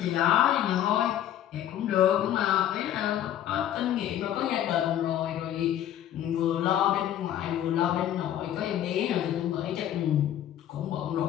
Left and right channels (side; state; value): right; quieter; 11.3 dB